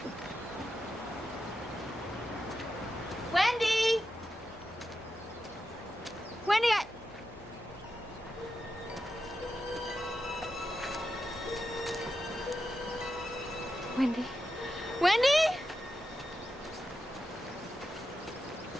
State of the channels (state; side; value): normal; both; correlation 0.89